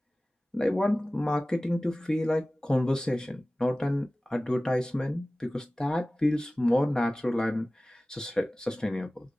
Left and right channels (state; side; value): normal; both; correlation 0.97